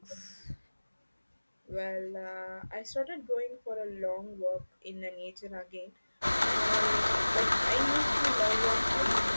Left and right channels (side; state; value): both; inverted; correlation -1.00